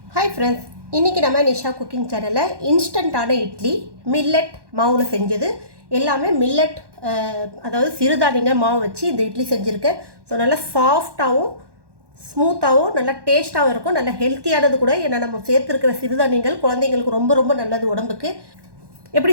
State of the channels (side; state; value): left; late; 1.1 ms